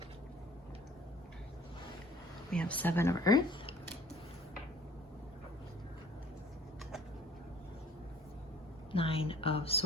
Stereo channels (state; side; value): normal; both; correlation 0.51